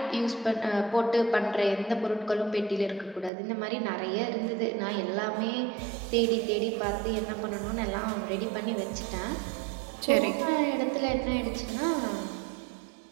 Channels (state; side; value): drops out; left; at 3.3 s